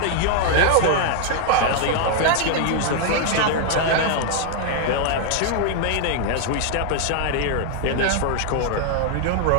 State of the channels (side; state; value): both; different; correlation 0.00